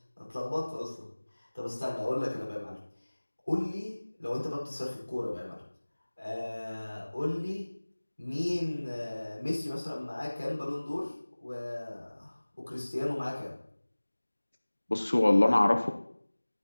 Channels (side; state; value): both; inverted; correlation -1.00